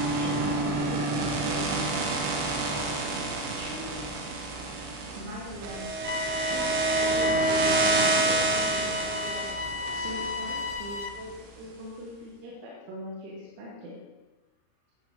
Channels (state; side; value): late; left; 35 ms